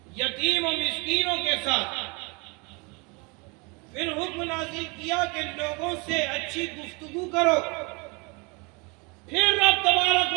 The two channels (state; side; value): quieter; left; 29.8 dB